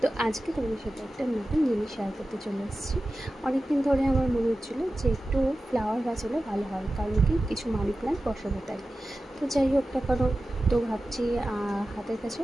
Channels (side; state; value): both; normal; correlation 0.94